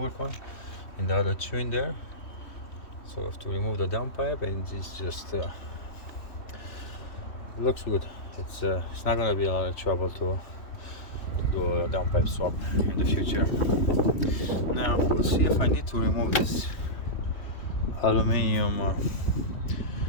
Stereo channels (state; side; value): late; right; 3.1 ms